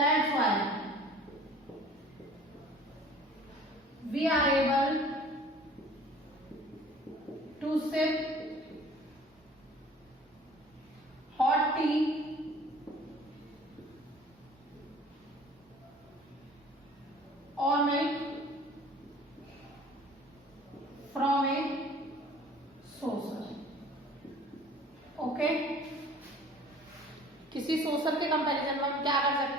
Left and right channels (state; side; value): normal; both; correlation 0.49